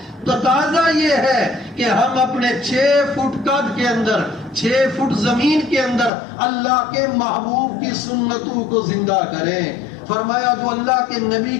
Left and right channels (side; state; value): right; drops out; at 6.1 s